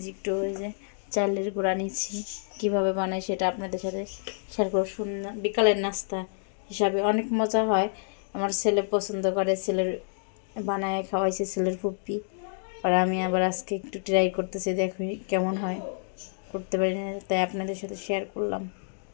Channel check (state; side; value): silent; right; digital silence